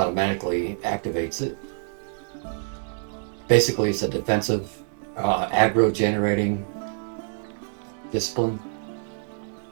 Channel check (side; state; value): left; silent; 61 dB below the other